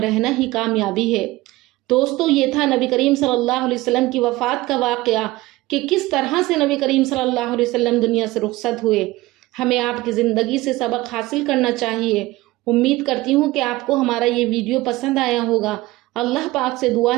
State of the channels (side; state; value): left; quieter; 19.1 dB